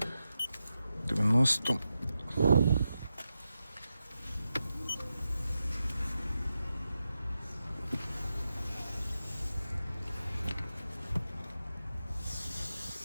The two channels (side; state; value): both; inverted; correlation -0.89